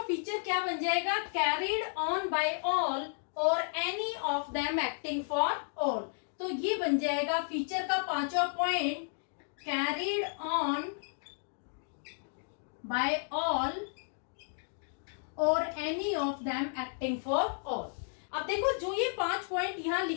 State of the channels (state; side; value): silent; right; digital silence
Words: फीचर क्या बन जाएगा? Carried on by all or any of them acting for all. तो ये बन जाएगा फीचर का पांचवा point, carried on by all or any of them acting for all. अब देखो, जो ये 5 पॉइंट यहाँ